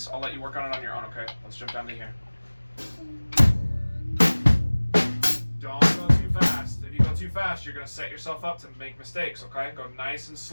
I'll let you work on it on your own, okay? Let's jump down to here. Don't go too fast. If you go go too fast, you're gonna set yourself up to make mistakes. Okay, go nice and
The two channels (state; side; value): inverted; both; correlation -1.00